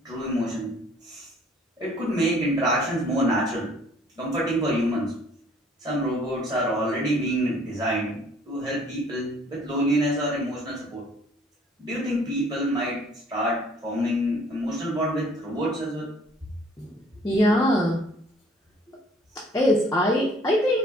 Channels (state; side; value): normal; both; correlation 0.57